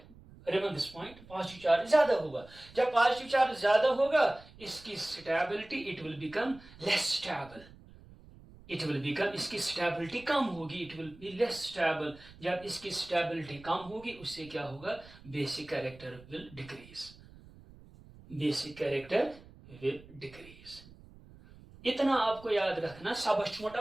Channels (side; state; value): right; noise; rumble, 21 dB below the sound